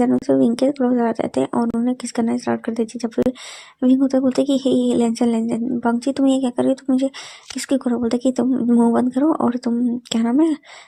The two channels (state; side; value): identical; both; correlation 1.00